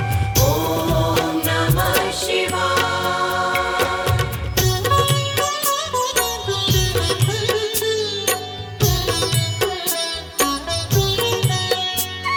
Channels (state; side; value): identical; both; correlation 1.00